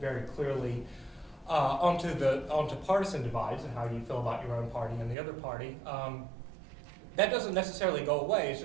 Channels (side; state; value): left; drops out; at 5.2 s